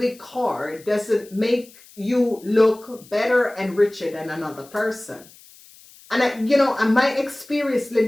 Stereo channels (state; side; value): noise; left; hiss, 24 dB below the sound